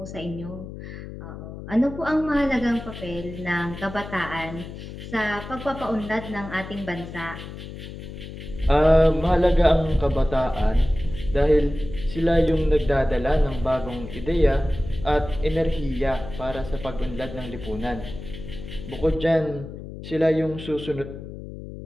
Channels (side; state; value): left; noise; hum, 11 dB below the sound